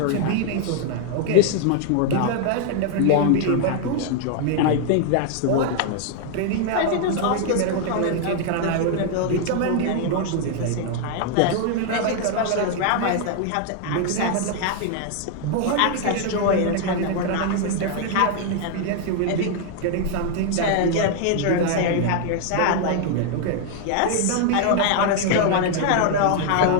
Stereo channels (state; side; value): different; both; correlation 0.00